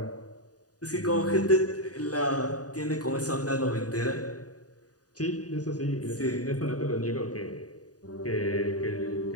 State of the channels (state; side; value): late; right; 0.68 ms